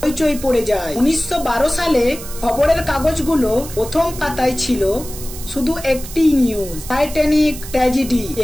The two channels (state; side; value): noise; right; hiss, 13 dB below the sound